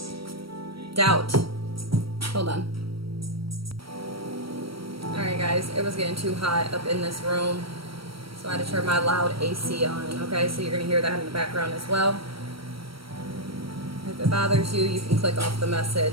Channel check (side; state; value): left; late; 0.75 ms